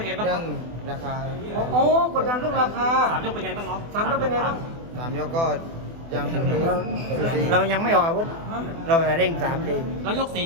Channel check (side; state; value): left; late; 24 ms